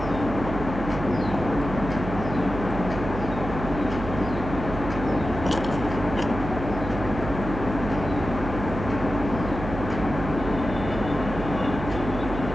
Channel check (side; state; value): right; noise; hum, 7 dB below the sound